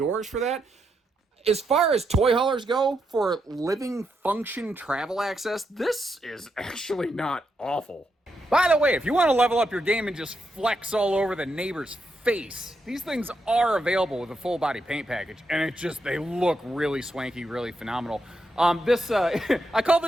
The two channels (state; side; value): normal; both; correlation 0.82